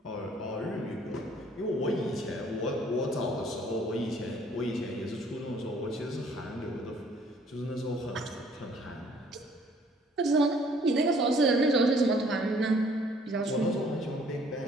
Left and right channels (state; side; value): normal; both; correlation 0.60